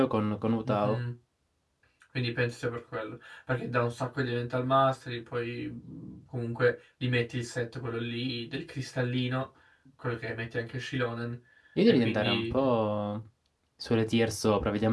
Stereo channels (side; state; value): both; identical; correlation 1.00